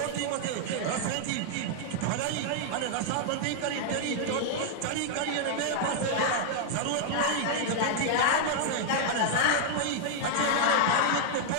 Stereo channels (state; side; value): different; both; correlation -0.01